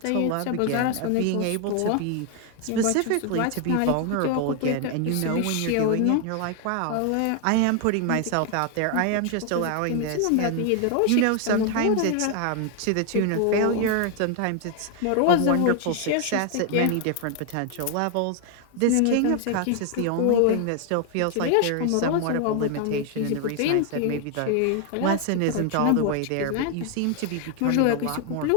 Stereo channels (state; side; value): different; both; correlation 0.00